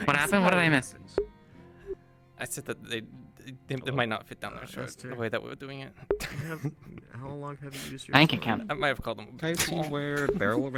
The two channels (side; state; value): both; identical; correlation 1.00